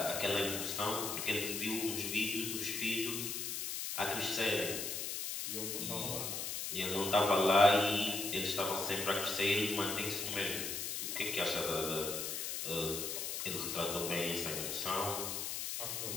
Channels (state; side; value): noise; left; hiss, 3 dB below the sound